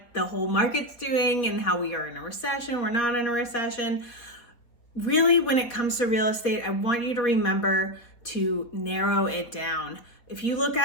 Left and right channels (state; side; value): late; right; 4.1 ms